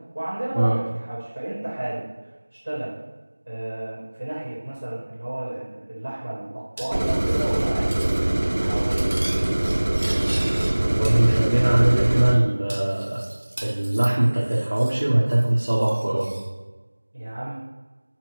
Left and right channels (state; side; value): inverted; both; correlation -1.00